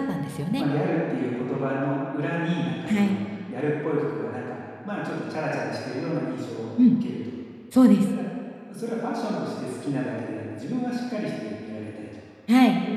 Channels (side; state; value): both; identical; correlation 1.00